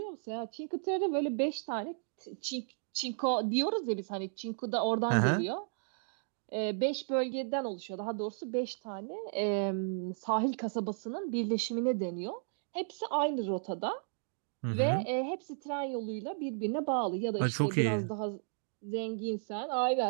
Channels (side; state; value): left; silent; digital silence